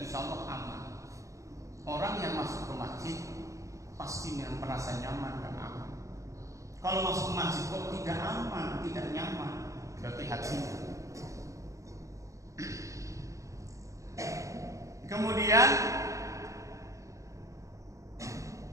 Allah aman. Orang yang masuk ke masjid pasti merasa nyaman dan aman. Kalau masuk ke masjid kok tidak aman, tidak nyaman, berarti hatinya. Kemudian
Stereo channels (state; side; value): late; left; 0.15 ms